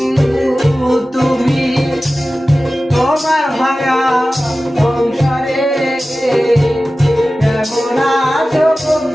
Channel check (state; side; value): normal; both; correlation 0.95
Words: তুমি তোমার ভাঙা সংসারে? কেমন আছো